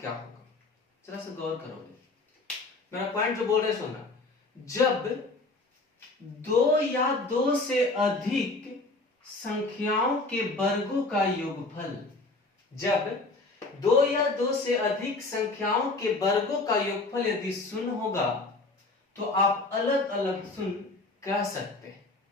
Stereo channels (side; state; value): right; quieter; 3.3 dB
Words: होगा। जरा से गौर करोगे मेरा पॉइंट जो बोल रहे सुना। जब दो या दो से अधिक संख्याओं के वर्गों का योगफल, जब दो या दो से अधिक संख्याओं के वर्गों का योगफल यदि शून्य होगा तो आप अलग अलग शून्य कह सकते हैं।